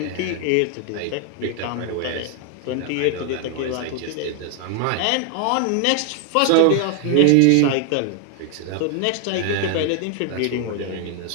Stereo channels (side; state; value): both; different; correlation 0.00